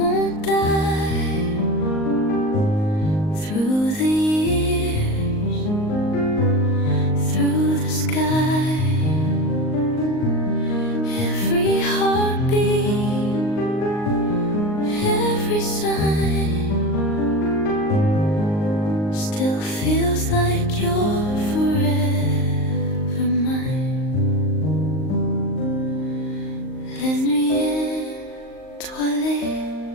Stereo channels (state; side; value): late; right; 38 ms